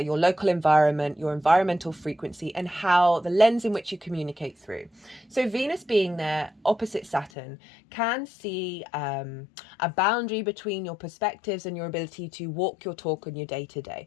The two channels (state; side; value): drops out; right; at 7.3 s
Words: your local environment, your environmental frequency, and how the lens in which you communicate through. So Venus being there opposite Saturn can see a boundary between your perspectives and your ability to walk your talk on your